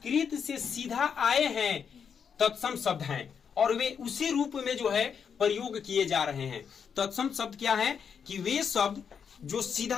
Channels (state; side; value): quieter; right; 6.9 dB